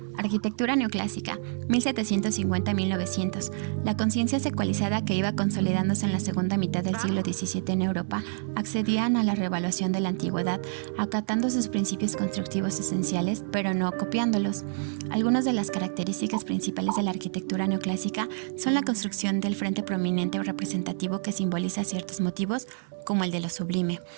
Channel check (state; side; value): silent; left; digital silence